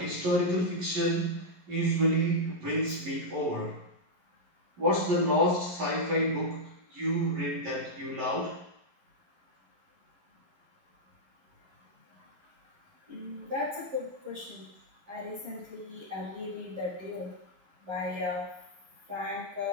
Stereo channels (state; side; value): late; left; 11 ms